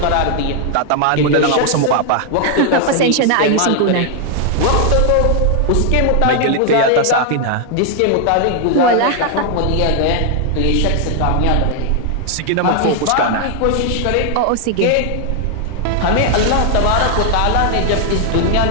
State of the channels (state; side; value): different; both; correlation 0.00